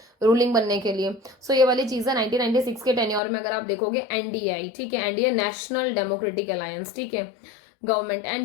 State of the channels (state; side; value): drops out; right; at 3.2 s